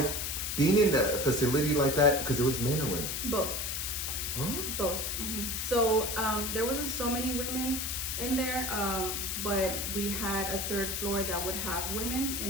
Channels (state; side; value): noise; left; hiss, 2 dB below the sound